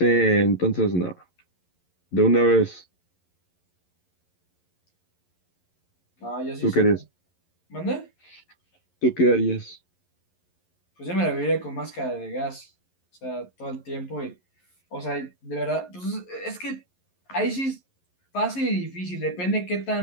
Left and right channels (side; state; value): right; late; 11 ms